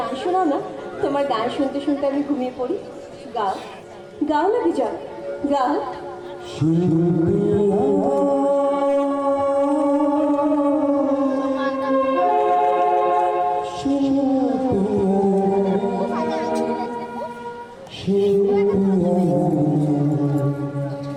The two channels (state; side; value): identical; both; correlation 1.00